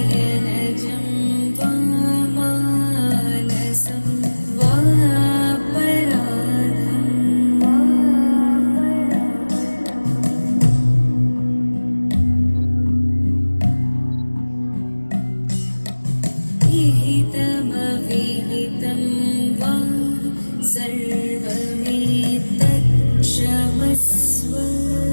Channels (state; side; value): inverted; both; correlation -1.00